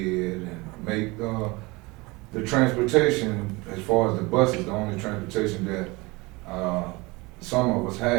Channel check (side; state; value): left; quieter; 24.2 dB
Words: and make the transportation, as far as the bus is the only transportation that some of us